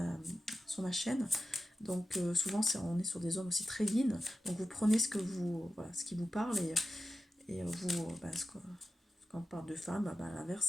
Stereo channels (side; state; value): both; normal; correlation 0.92